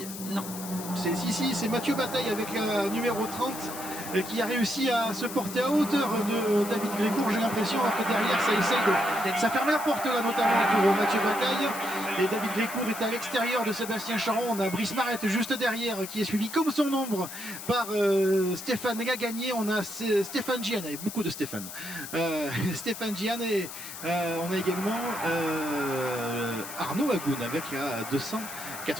Non. C'est Mathieu Bataille avec la numéro 30 qui a réussi à se porter à hauteur de David Grécourt, j'ai l'impression, alors que derrière ça essaye de... Ça ferme la porte là notamment pour Mathieu Bataille. Et David Grécourt est à l'extérieur de Sébastien Charon. On a Brice Marette juste derrière qui est suivi comme son ombre par Stéphane Lagagné. On a Stéphane Gian, il y a beaucoup de Stéphane. Stéphane Gian et on a également Arnaud Agoun avec la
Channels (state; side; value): noise; left; hiss, 10 dB below the sound